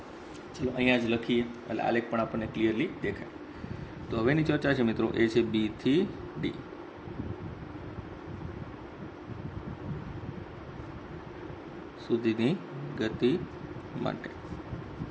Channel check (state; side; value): identical; both; correlation 1.00